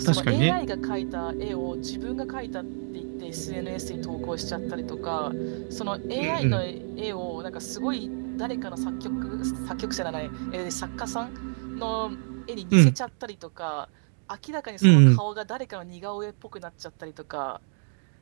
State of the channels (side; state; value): left; silent; digital silence